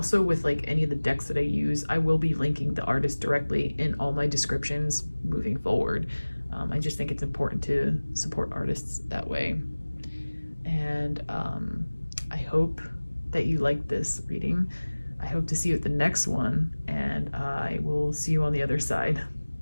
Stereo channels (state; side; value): inverted; both; correlation -1.00